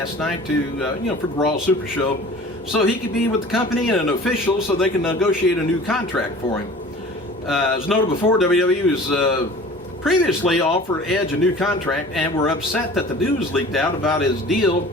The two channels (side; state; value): both; normal; correlation 0.43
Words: night to, for the Raw Super Show, so he could be with the company and an official so they can negotiate a new contract for him. As noted before, WWE was previously offered Edge a new contract and were upset that the news leaked out about his deal